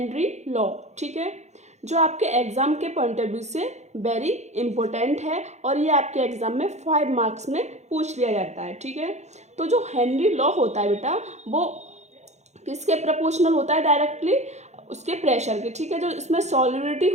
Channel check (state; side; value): late; left; 0.33 ms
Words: लॉ। ठीक है, जो आपके एग्ज़ाम के पॉइंट ऑफ व्यू से वेरी इंपॉर्टेंट है और ये आपके एग्ज़ाम में 5 मार्क्स में पूछ लिया जाता है। ठीक है, तो जो हेनरी लॉ होता है बेटा वो किसके प्रोपोर्शनल होता है? डायरेक्टली उसके प्रेशर के। ठीक है, जो इसमें सॉल्युबिलिटी